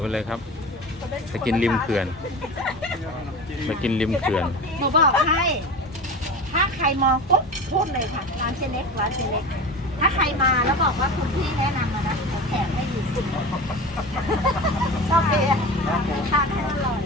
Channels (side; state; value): both; normal; correlation 0.31